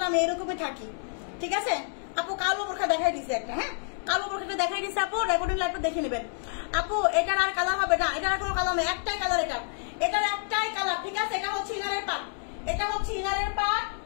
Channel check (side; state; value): right; silent; 59 dB below the other